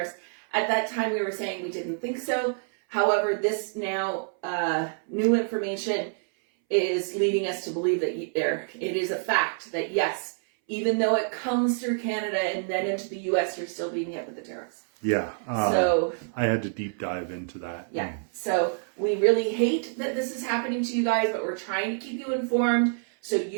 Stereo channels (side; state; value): left; silent; 60 dB below the other